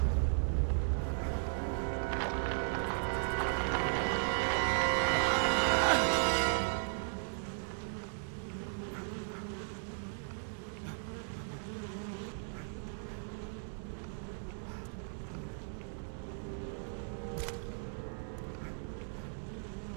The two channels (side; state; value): left; silent; 53 dB below the other